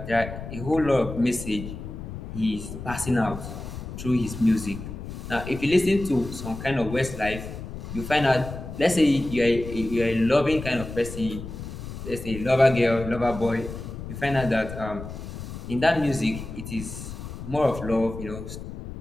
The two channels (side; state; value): left; noise; rumble, 9 dB below the sound